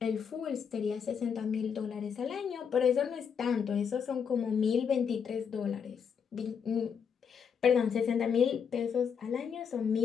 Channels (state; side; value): quieter; right; 7.0 dB